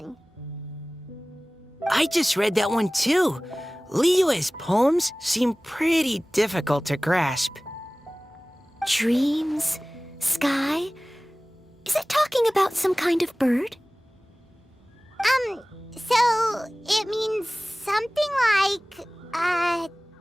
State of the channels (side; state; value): both; normal; correlation 0.98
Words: I just read that one too. Liyue's poems seem pretty difficult to grasp. Dreams? Sky? Is it talking about some kind of bird? So it means something like,